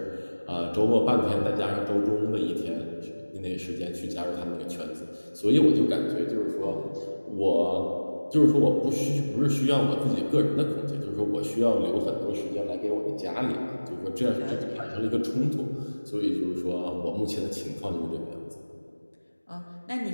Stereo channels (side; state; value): both; inverted; correlation -1.00